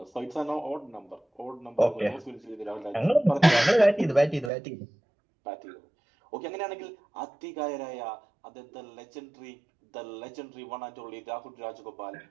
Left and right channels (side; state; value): left; drops out; at 4.5 s